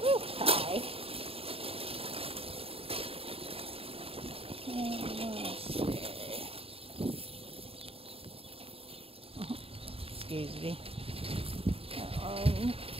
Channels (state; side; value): late; left; 0.27 ms